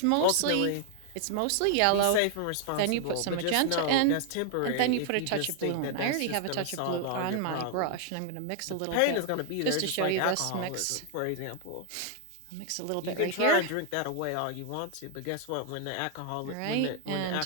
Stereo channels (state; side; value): different; both; correlation 0.00